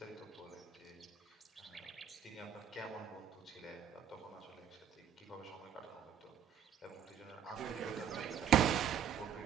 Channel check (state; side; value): quieter; left; 9.0 dB